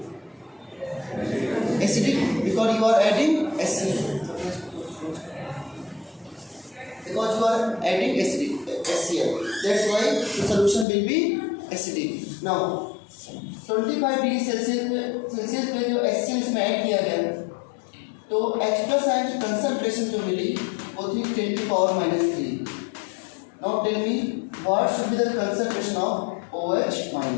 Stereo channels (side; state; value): right; drops out; at 10.9 s